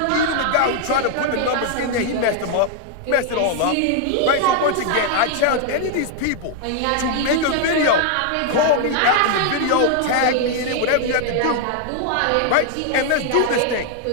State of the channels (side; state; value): both; different; correlation 0.00